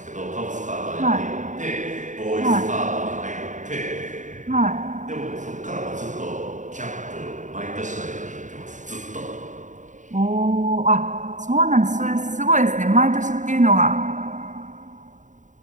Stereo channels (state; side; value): late; left; 0.36 ms